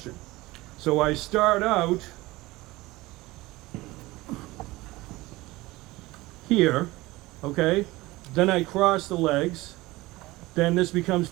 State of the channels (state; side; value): quieter; left; 20.0 dB